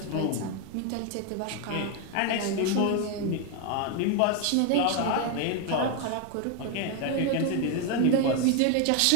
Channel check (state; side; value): different; both; correlation 0.01